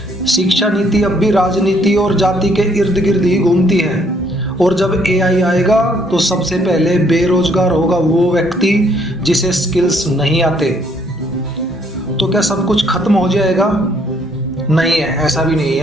शिक्षा नीति अब भी राजनीति और जाति के इर्द गिर्द ही घूमती है। और जब एआई आएगा तो सबसे पहले बेरोजगार होगा वो व्यक्ति जिसे स्किल्स नहीं आते। तो क्या सब कुछ खत्म हो जाएगा? नहीं है, ऐसा भी नहीं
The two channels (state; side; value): normal; both; correlation 0.67